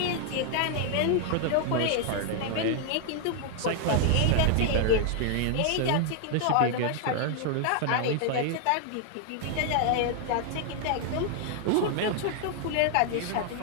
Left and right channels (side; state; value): both; different; correlation 0.00